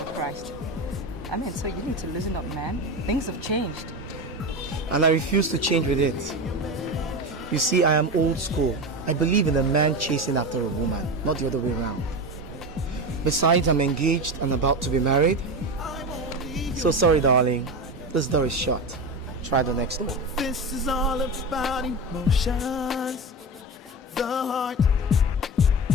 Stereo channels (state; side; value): normal; both; correlation 0.22